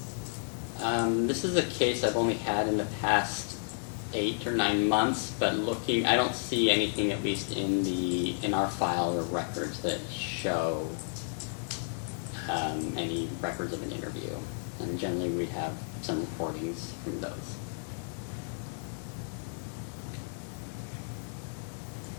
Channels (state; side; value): silent; right; digital silence